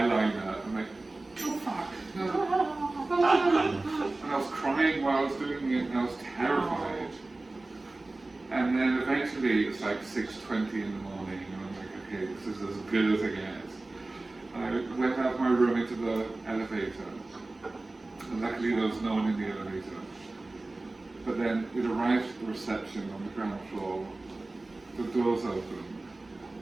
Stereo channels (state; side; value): quieter; left; 3.0 dB